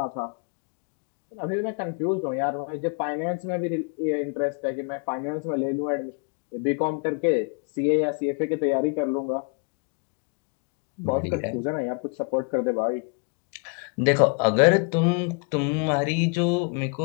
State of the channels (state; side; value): quieter; right; 37.5 dB